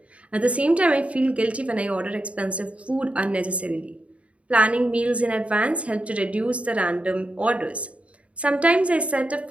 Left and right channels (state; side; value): late; left; 0.064 ms